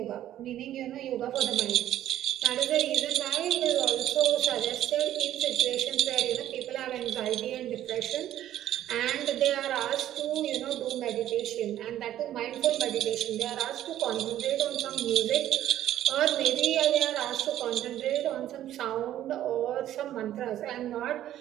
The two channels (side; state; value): left; quieter; 12.4 dB